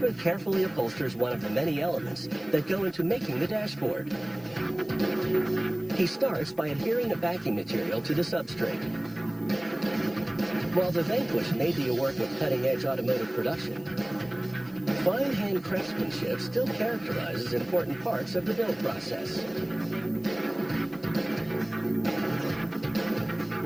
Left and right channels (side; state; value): left; noise; hiss, 29 dB below the sound